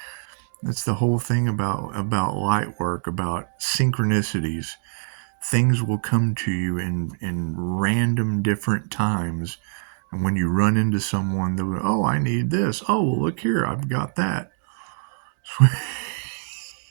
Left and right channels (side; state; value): left; silent; digital silence